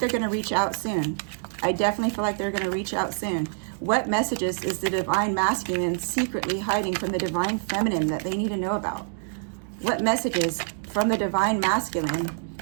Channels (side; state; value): left; silent; digital silence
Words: going to reach out soon. I definitely feel like they're going to reach out soon. What messages is the Divine Masculine secretly hiding from the Divine Feminine that they need to know about? What messages from the Divine Masculine